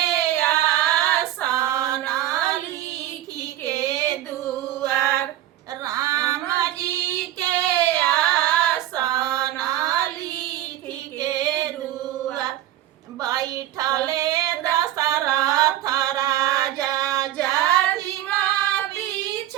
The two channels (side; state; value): left; quieter; 13.5 dB